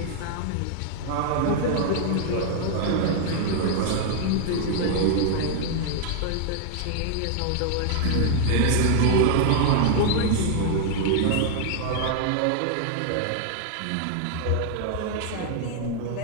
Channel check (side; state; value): both; different; correlation 0.00